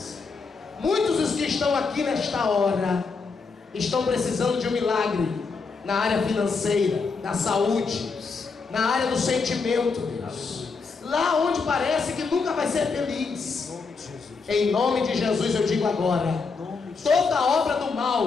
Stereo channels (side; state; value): right; quieter; 4.7 dB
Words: Muitos dos que estão aqui nesta hora estão precisando de um milagre na área financeira, da saúde, na área do sentimento, Deus. Lá onde parece que nunca vai ser feliz. Em nome de Jesus eu digo agora, toda obra do